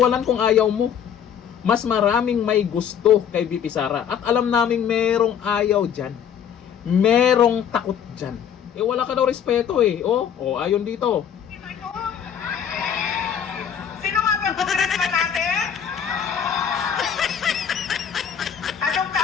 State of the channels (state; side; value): quieter; right; 8.5 dB